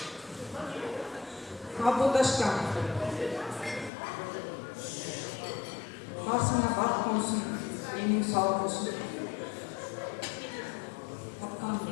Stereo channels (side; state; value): right; drops out; at 3.9 s